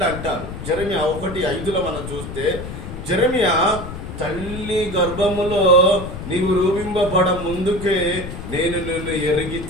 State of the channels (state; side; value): noise; left; rumble, 9 dB below the sound